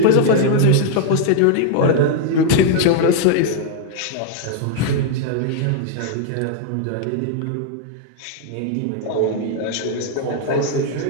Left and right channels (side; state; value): both; different; correlation 0.00